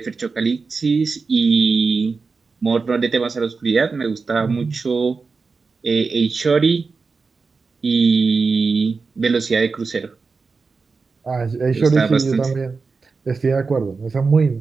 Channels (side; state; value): left; quieter; 4.5 dB